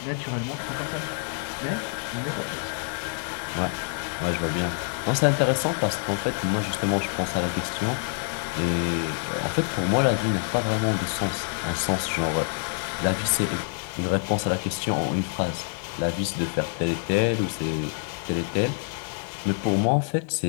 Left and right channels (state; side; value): silent; right; 61 dB below the other